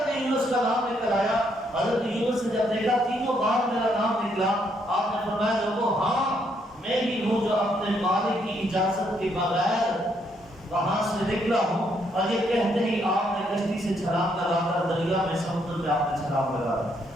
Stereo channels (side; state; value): both; normal; correlation 0.73